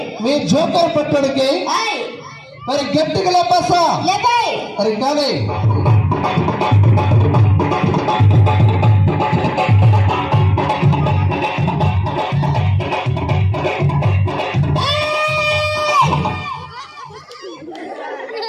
మీ జోకర్ పట్టుడికి మరి గట్టిగా లేపాసా మరి కానీ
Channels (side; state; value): both; identical; correlation 1.00